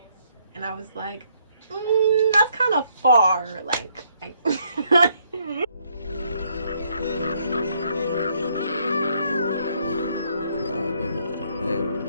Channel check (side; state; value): both; inverted; correlation -0.70